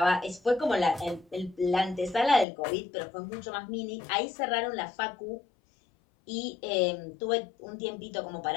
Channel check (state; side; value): drops out; right; at 2.5 s